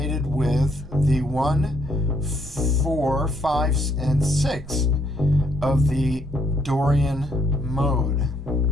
with the 1, 4, 5, and 6 of the Dorian Mode.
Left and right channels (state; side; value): normal; both; correlation 0.71